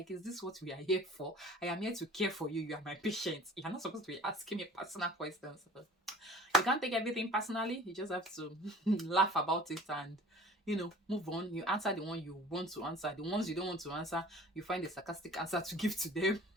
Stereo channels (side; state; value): both; normal; correlation 0.46